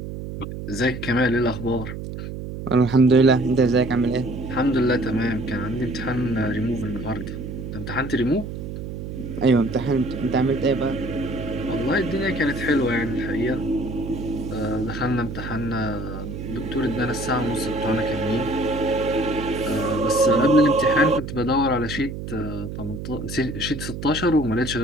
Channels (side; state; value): right; noise; hum, 8 dB below the sound